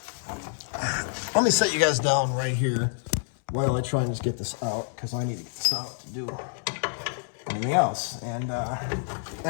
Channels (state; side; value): silent; right; 60 dB below the other